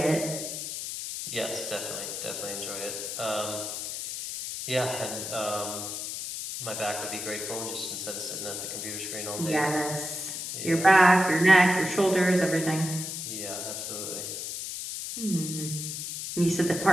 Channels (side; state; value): left; noise; hiss, 5 dB below the sound